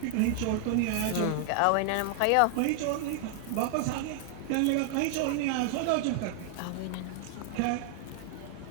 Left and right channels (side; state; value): both; different; correlation 0.00